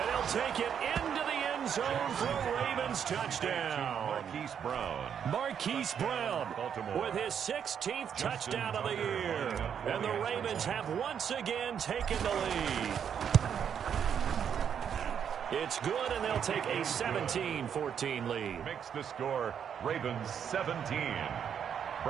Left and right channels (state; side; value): quieter; left; 8.1 dB